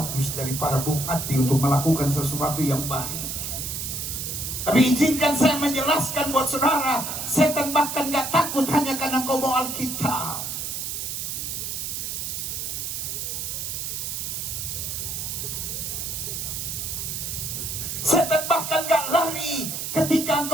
dari para bupati untuk melakukan sesuatu yang baik. Tapi izinkan saya menjelaskan buat saudara, setan bahkan gak takut hanya karena kau bawa Alkitab. Setan bahkan gak lari ketika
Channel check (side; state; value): right; noise; hiss, 4 dB below the sound